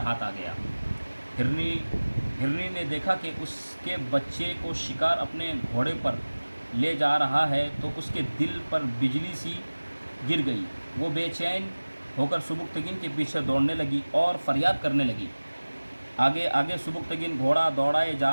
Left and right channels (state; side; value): inverted; both; correlation -1.00